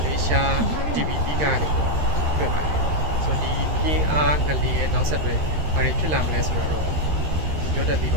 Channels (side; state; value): left; late; 13 ms